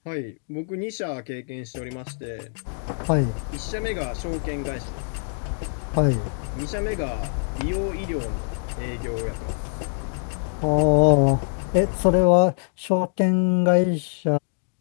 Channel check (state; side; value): silent; right; 62 dB below the other